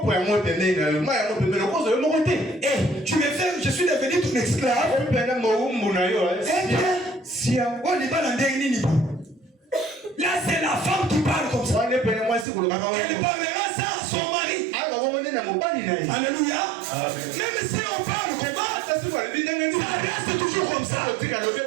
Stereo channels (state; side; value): drops out; left; at 12.5 s